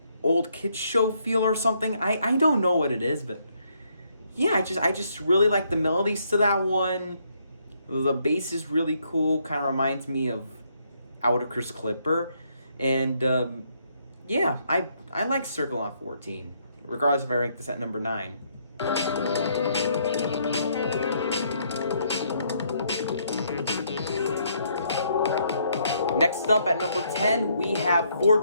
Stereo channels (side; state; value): both; inverted; correlation -0.72